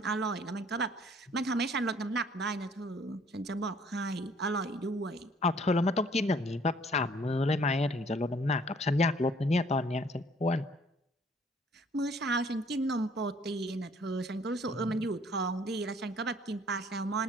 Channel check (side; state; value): both; normal; correlation 0.59